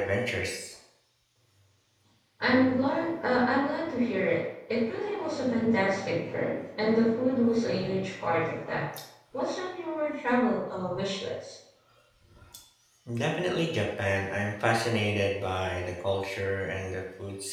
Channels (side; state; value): both; identical; correlation 1.00